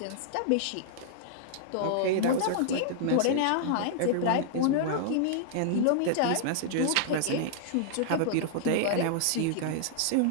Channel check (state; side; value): different; both; correlation -0.01